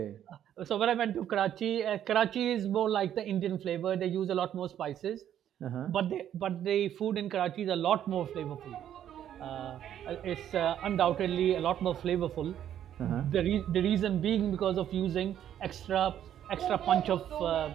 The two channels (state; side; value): quieter; left; 10.5 dB